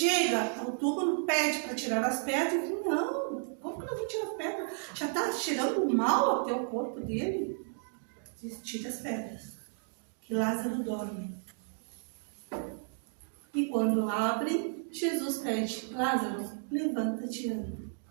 ao túmulo, pede para tirar as pedras, e não, como que não vou tirar as pedras? Já está cheirando mal até o corpo dele. Diz, tira as pedras, que Lázaro dorme. E quando abrem, Jesus pede, Lázaro, levanta-te e anda.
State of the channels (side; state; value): left; silent; 56 dB below the other